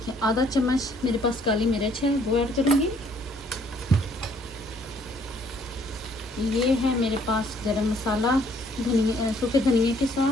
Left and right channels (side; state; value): both; normal; correlation 0.63